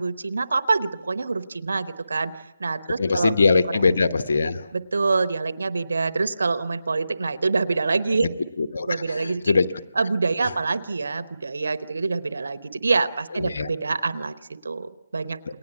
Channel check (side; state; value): both; inverted; correlation -0.89